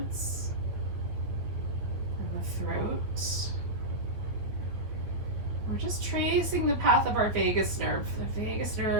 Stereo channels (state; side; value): late; left; 8.9 ms